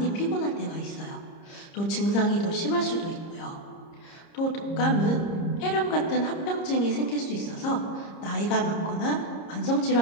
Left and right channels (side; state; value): right; late; 30 ms